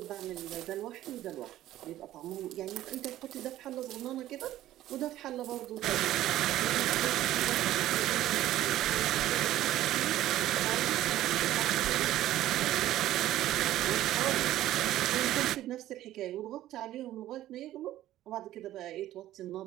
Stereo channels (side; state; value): left; quieter; 13.9 dB